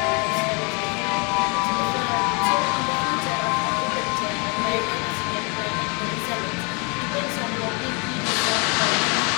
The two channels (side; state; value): right; quieter; 32.8 dB